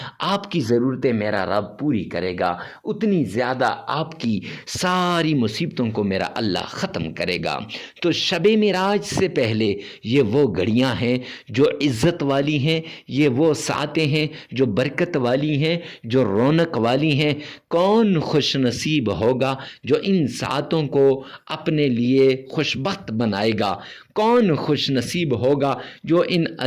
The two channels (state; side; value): identical; both; correlation 1.00